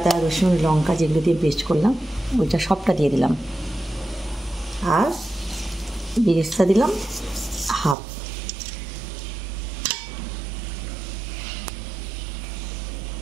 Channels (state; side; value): drops out; left; at 8.0 s